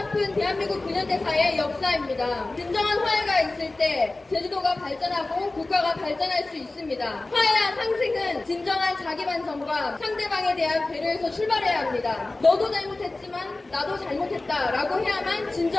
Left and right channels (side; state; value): right; quieter; 3.0 dB